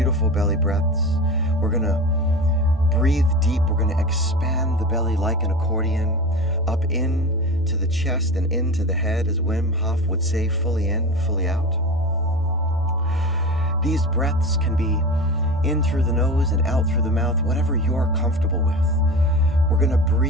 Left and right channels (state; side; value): normal; both; correlation 0.29